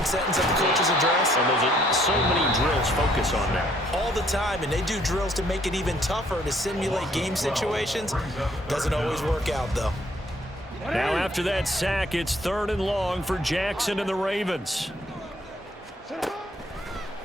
sentence of the coach's address? And there's so many drills focus on that. All the time, and they do drills to make it even tougher to simulate game situations. Doesn't always work out, though. Now after that sack, it's 3rd and long for Jackson and the Ravens.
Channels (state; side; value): normal; both; correlation 0.64